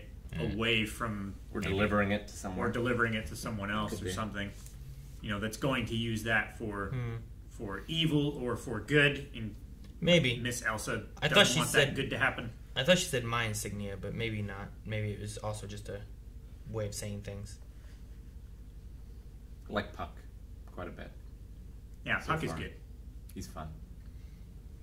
away from, We're delivering it to or someone. delivering it to someone else Could or be. something. You know, that's going to use that for evil or for good. And Maybe. Miss Elsa I doesn't thought she want said- that good to happen. I thought she said my insignia, but maybe not. Maybe it was also just a way of saying things. I like Puck quite a bit. Yeah, So Puck is far. good. He's fun.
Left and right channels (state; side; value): identical; both; correlation 1.00